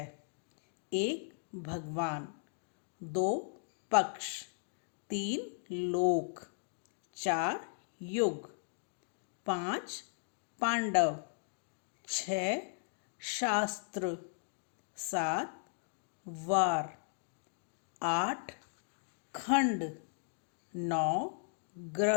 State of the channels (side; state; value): right; silent; digital silence